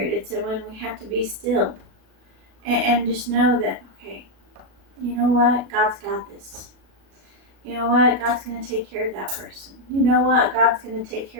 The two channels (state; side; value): late; left; 37 ms